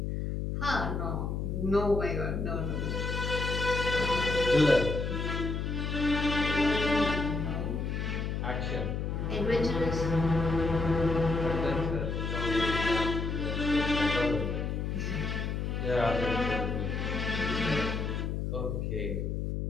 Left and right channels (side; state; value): left; noise; hum, 2 dB below the sound